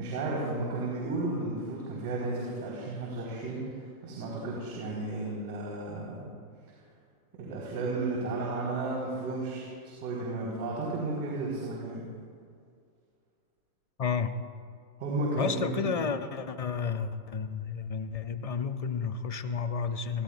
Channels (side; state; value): right; late; 1.7 ms